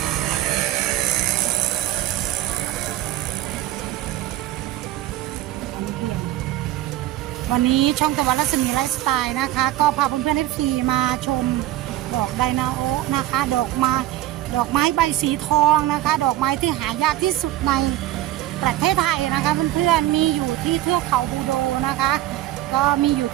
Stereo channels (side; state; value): left; quieter; 14.5 dB